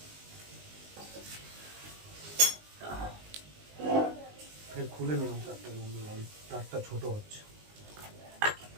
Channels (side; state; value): left; late; 19 ms